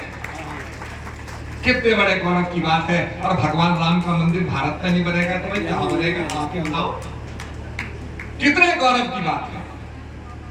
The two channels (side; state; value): both; identical; correlation 1.00